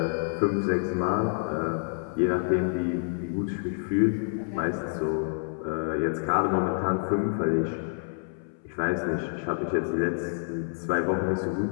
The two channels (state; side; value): silent; right; 59 dB below the other